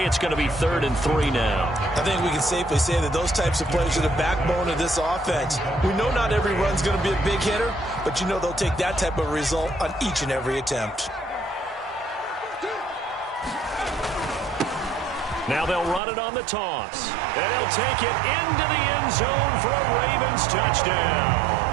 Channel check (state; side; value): drops out; left; at 16.0 s